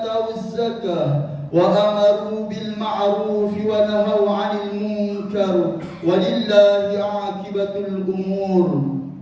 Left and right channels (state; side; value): identical; both; correlation 1.00